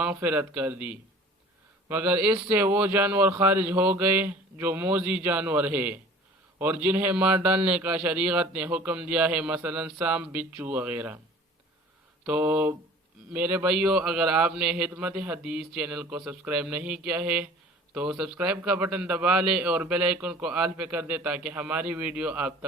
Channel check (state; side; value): normal; both; correlation 0.46